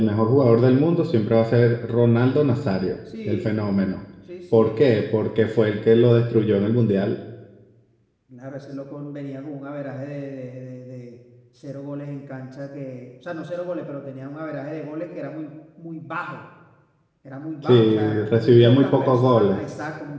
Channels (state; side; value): identical; both; correlation 1.00